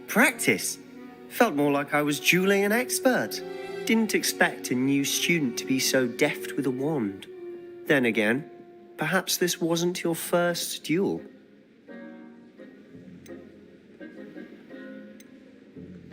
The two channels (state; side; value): identical; both; correlation 1.00